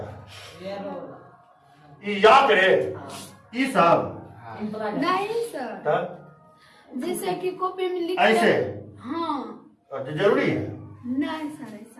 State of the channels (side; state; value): both; identical; correlation 1.00